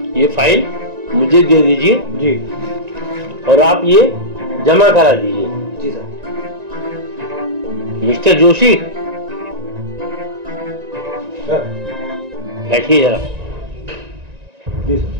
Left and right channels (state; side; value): late; left; 1.9 ms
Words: ये फाइल मुझे दे दीजिए जी, और आप ये जमा करा दीजिए। जी सर। मिस्टर जोशी, बैठिए जरा। जी सर।